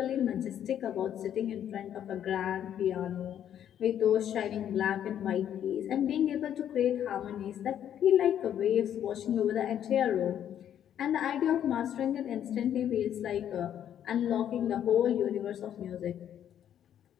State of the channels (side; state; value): right; quieter; 10.1 dB